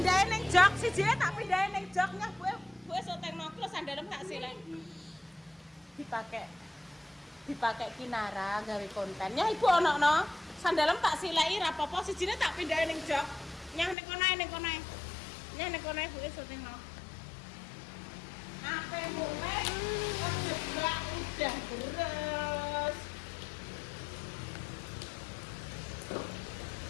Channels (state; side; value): drops out; right; at 14.0 s